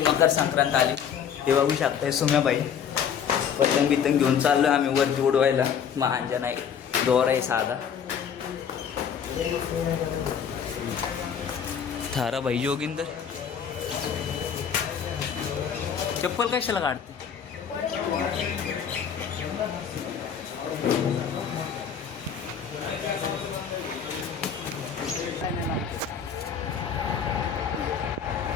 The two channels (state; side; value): quieter; right; 7.7 dB